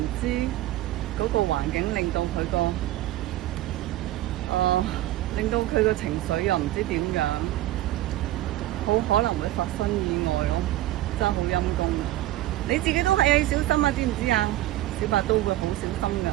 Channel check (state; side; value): quieter; left; 15.3 dB